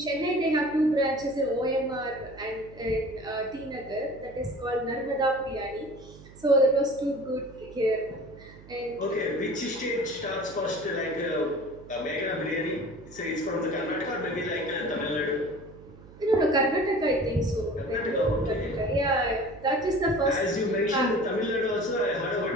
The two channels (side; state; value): right; noise; hum, 20 dB below the sound